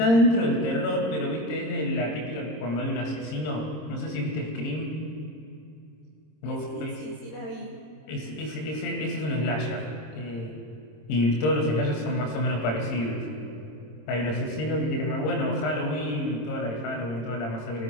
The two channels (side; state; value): right; late; 26 ms